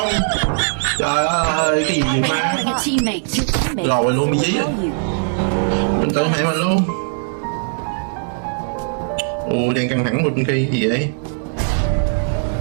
Trời ơi, cái gì mà lòi luôn bị dí rồi. Mình tự hại mình luôn. Ồ, đang căng thẳng bên kia gì vậy?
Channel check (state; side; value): silent; left; 66 dB below the other